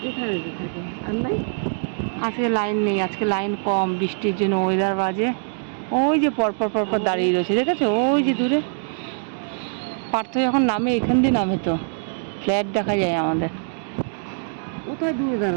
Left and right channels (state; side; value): silent; left; digital silence